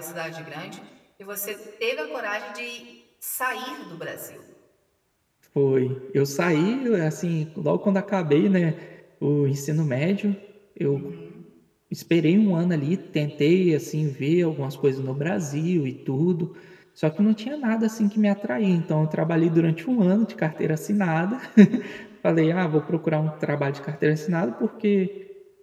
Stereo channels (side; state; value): both; identical; correlation 1.00